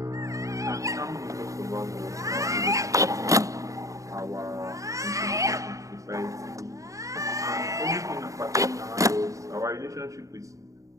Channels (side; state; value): left; late; 0.16 ms